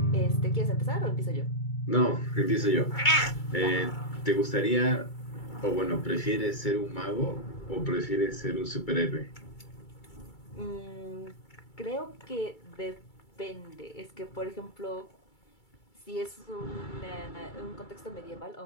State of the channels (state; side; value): late; right; 2.3 ms